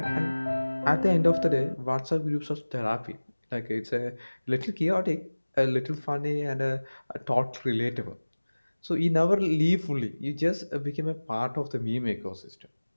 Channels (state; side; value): inverted; both; correlation -1.00